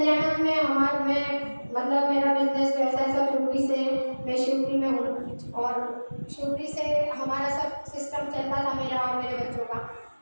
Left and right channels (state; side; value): inverted; both; correlation -1.00